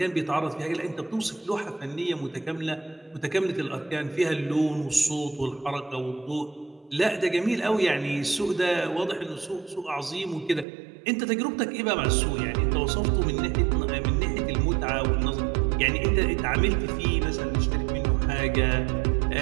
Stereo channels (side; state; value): left; drops out; at 10.7 s